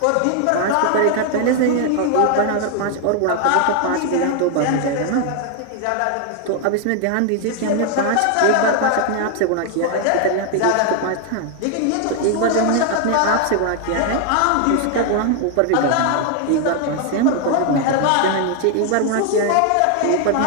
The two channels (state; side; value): different; both; correlation 0.00